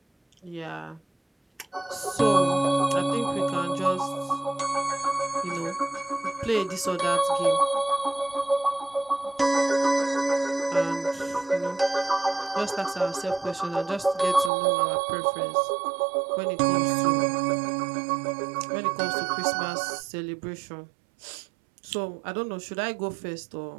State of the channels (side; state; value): left; drops out; at 14.5 s